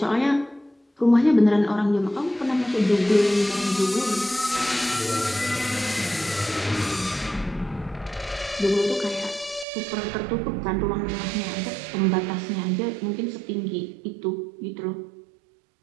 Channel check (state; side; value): drops out; left; at 9.7 s